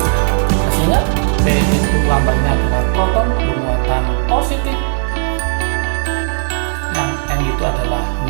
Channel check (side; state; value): left; silent; digital silence